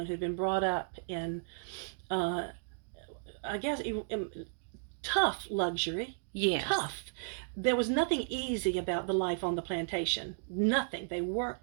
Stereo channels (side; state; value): left; silent; digital silence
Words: who'd been brought up in, I guess, tough luxury. Yes. Tough. There was nothing easy about the life on the plantation. Nothing. They